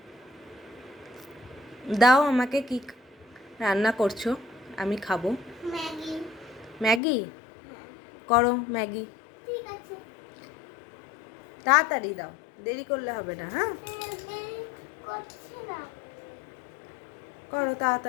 দাও আমাকে, কি রান্না করছো, আমি খাবো। ম্যাগি। ম্যাগি? করো ম্যাগি। ঠিক আছে। তাড়াতাড়ি দাও, দেরি করলে হবে না। হ্যাঁ, করছি না। করো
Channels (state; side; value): drops out; right; at 7.0 s